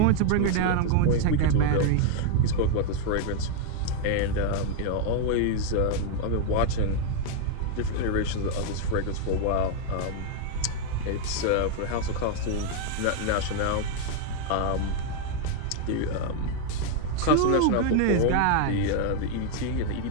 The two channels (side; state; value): both; different; correlation 0.00